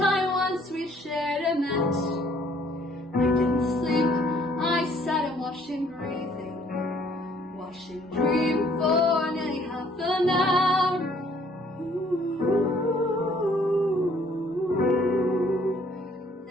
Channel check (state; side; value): normal; both; correlation 0.61